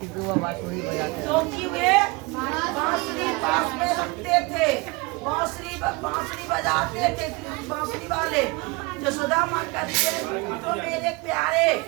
वे बांसुरी पास में रखते थे, बांसुरी बजाते थे बांसुरी वाले। जसोदा माँ कहती है तो मेरे प्यारे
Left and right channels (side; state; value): left; quieter; 25.5 dB